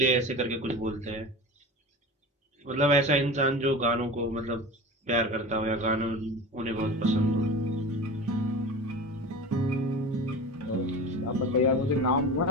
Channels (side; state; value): both; normal; correlation 0.32